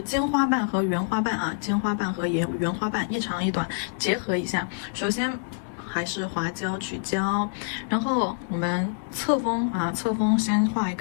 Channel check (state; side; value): silent; right; digital silence